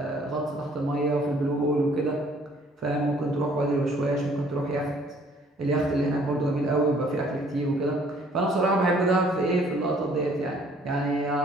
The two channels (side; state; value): both; normal; correlation 0.59